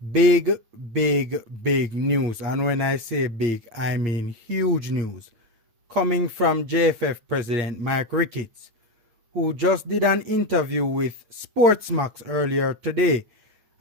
Big, big news. And when I say big, I mean huge news. Coming from JFF President Mike Ricketts, who just did an interview with Sportsmax earlier today.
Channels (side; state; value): left; late; 9.0 ms